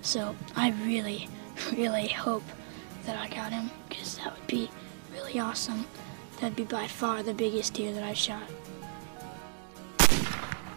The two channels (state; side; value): silent; left; digital silence